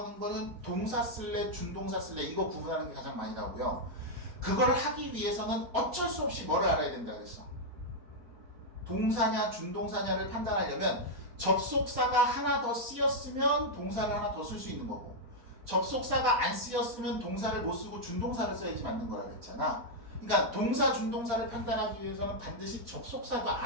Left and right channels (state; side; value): late; left; 4.4 ms